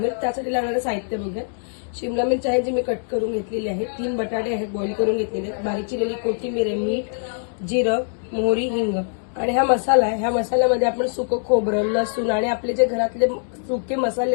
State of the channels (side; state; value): right; silent; digital silence